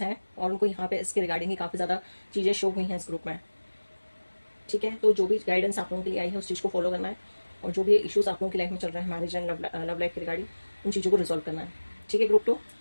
हैं और उनको यहाँ पे इसके रिगार्डिंग ही काफ़ी ज़्यादा चीज़ें शो हुई हैं इस ग्रुप में, ठीक है। तो जो भी गाइडेंस आप लोगों के लिए आई है उस चीज़ को फॉलो करना है। और जो भी इश्यूज़ आप लोगों की लाइफ में चल रहे हैं मैरिज एंड लव लाइफ के रिगार्डिंग, उन चीज़ों को रिजॉल्व करना है, ठीक है। Group 2,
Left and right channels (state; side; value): inverted; both; correlation -1.00